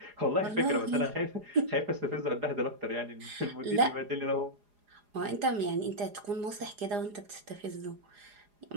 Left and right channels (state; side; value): late; left; 4.9 ms